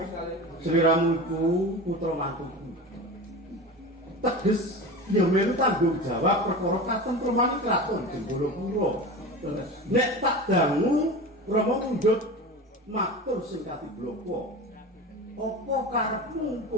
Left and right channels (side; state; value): both; normal; correlation 0.30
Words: Sri Ramu iku putra mantuku. Teges ya melu tanggung jawab perkara katentreman kraton Jenggolapura. Nek tak dangu Rama mundhut matur sing katibloko. Apa karepmu